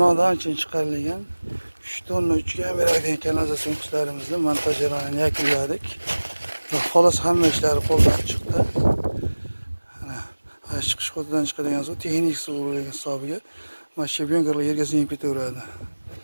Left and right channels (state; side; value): inverted; both; correlation -1.00